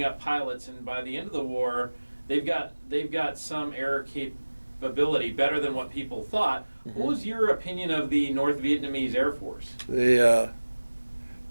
up pilots, and by the end of the war, they've got some air capability better than what people thought. Mm-hmm. What was your opinion of the North Vietnamese Air Force? The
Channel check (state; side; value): inverted; both; correlation -1.00